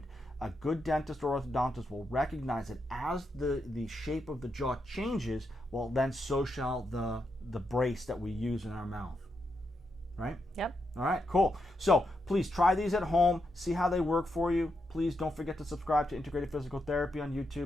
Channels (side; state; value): both; normal; correlation 0.83